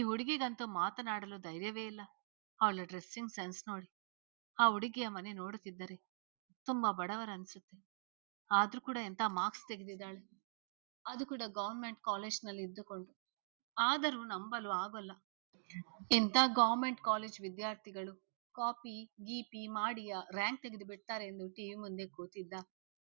ಹುಡುಗಿಗಂತೂ ಮಾತನಾಡಲು ಧೈರ್ಯವೇ ಇಲ್ಲ. ಅವಳ ಡ್ರೆಸ್ಸಿಂಗ್ ಸೆನ್ಸ್ ನೋಡಿ. ಆ ಹುಡುಗಿಯ ಮನೆ ನೋಡುತ್ತಿದ್ದರೆ ತುಂಬಾ ಬಡವರ ಅನ್ಸುತ್ತೆ. ಆದ್ರೂ ಕೂಡ ಎಂತ ಮಾರ್ಕ್ಸ್ ತೆಗೆದಿದ್ದಾಳೆ, ಅದು ಕೂಡ ಗವರ್ಮೆಂಟ್ ಕಾಲೇಜ್ನಲ್ಲಿ ಇದ್ದುಕೊಂಡು. ಆದರೂ ನಂಬಲು ಆಗೋಲ್ಲ. ಎಂತ ಗವರ್ಮೆಂಟ್ ಕಾಲೇಜ್ ವಿದ್ಯಾರ್ಥಿಗಳು ಕಾಪಿ ಗೀಪಿ ಮಾಡಿ ರ್ಯಾಂಕ್ ತೆಗೆದು ಬಿಡ್ತಾರೆ ಎಂದು ಟಿವಿ ಮುಂದೆ ಕೂತಿದ್ದ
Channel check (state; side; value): silent; left; digital silence